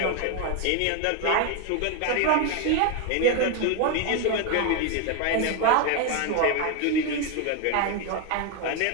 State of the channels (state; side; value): different; both; correlation 0.01